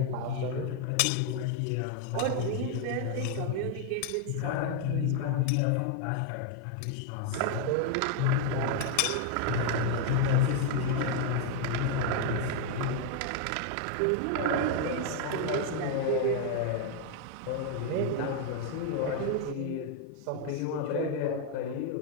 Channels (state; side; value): different; both; correlation 0.00